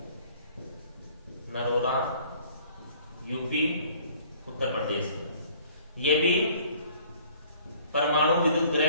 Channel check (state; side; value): inverted; both; correlation -0.55